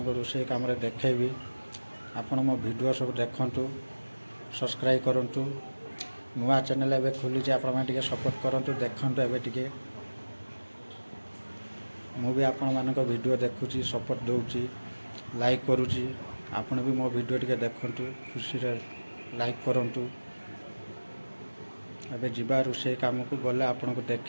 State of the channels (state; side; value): inverted; both; correlation -1.00